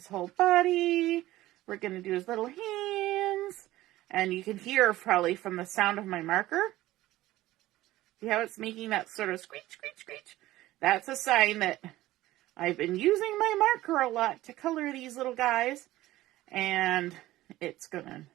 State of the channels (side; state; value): left; quieter; 16.3 dB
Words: whole body. We're going to do his little hands. And you can hear probably from the sound of my marker. See how it's making that sort of screech, screech, screech? That's a sign that I've been using my marker a lot to color these little guys. And